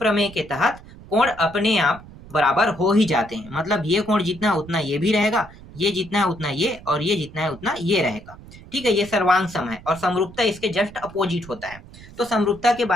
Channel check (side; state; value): right; noise; rumble, 19 dB below the sound